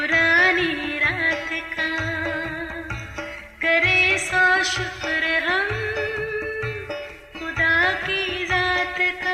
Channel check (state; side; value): identical; both; correlation 1.00